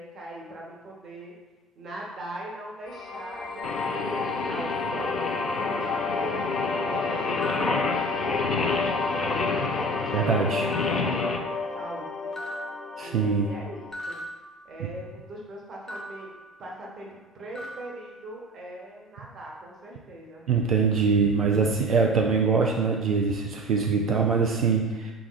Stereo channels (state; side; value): normal; both; correlation 0.37